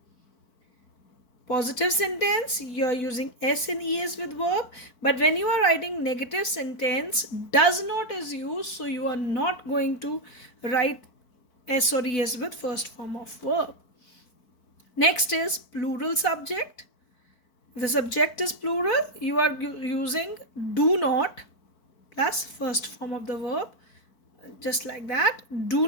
Positive sentence, you are using S and ES with verb, but when you are writing negative sentence, does not is used, so you are not going to write S or ES with first form of verb. Next is plural subject. The subject is plural, you are using do not plus first form of the verb, just like that. Do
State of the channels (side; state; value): right; late; 4.5 ms